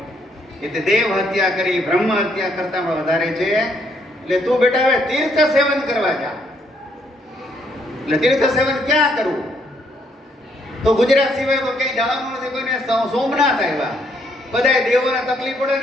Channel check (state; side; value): normal; both; correlation 0.71